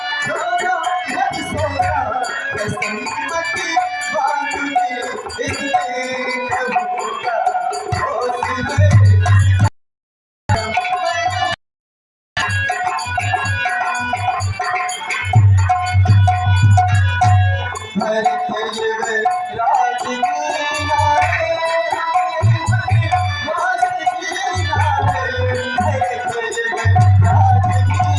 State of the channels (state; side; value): identical; both; correlation 1.00